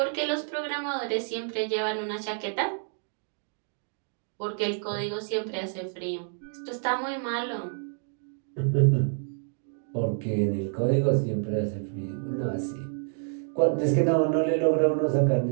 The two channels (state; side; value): silent; left; 59 dB below the other